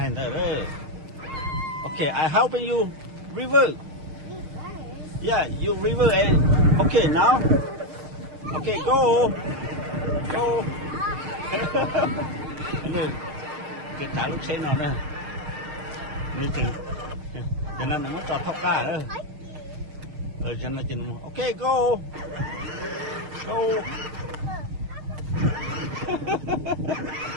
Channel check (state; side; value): late; left; 6.6 ms